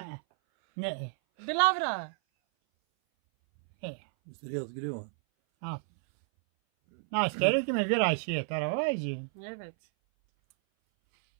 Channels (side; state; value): left; silent; 57 dB below the other